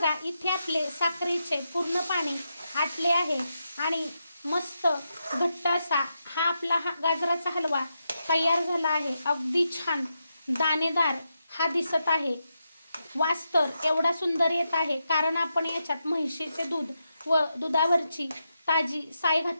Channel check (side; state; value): both; inverted; correlation -0.85